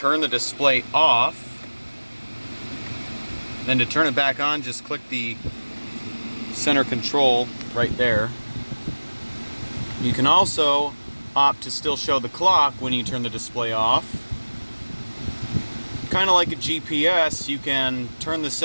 the display off. Then to turn it back on, just click the center control right there. You can also opt to still show the clock when you turn the display off. Kind of like a GPS, you can turn the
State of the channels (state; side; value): inverted; both; correlation -1.00